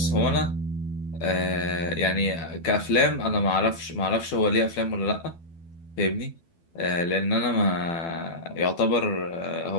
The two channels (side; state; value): right; late; 12 ms